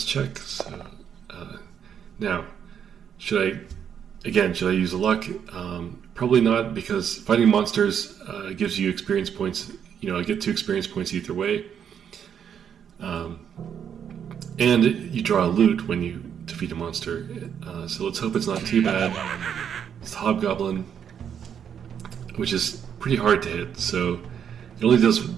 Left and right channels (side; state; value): left; quieter; 8.3 dB